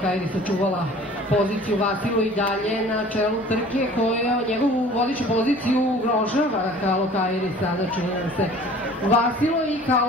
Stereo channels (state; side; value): normal; both; correlation 0.48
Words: sačuvala poziciju. Vasilo i dalje na čelu trke koja njegovu vodeću poziciju ugrožava. Kalokairi sada čini nam se. Vasilo i